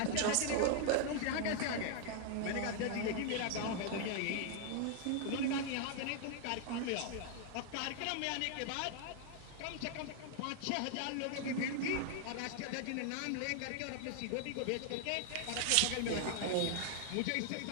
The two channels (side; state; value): both; different; correlation 0.00